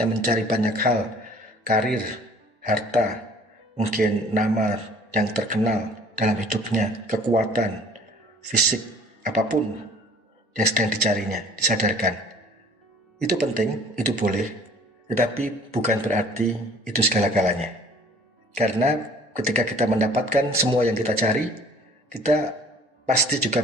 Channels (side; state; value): both; normal; correlation 0.51